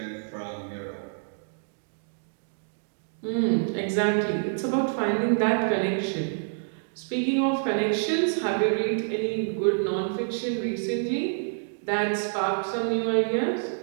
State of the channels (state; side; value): silent; left; digital silence